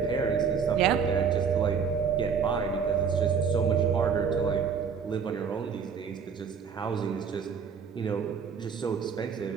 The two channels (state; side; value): quieter; left; 6.4 dB